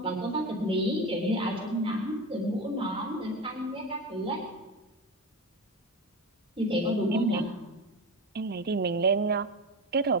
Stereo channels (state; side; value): normal; both; correlation 0.23